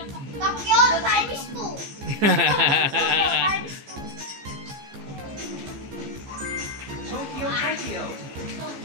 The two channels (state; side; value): late; left; 15 ms